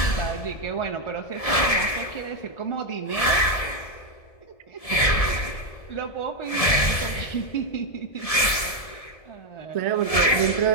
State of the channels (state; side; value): late; right; 1.7 ms